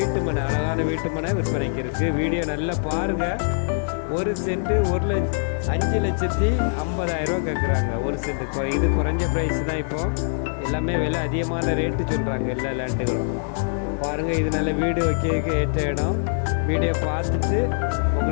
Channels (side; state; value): right; silent; digital silence